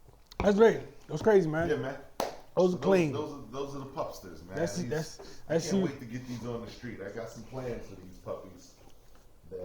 That's great. That was crazy, man. Yeah, man. Those are clean. Those are the pupsters, man. I can't wait to get these on the street. I got some plans for these puppies.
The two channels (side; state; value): both; identical; correlation 1.00